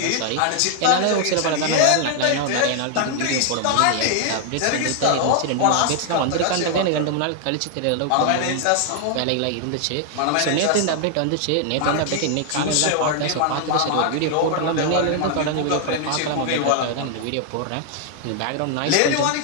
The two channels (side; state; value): both; different; correlation 0.00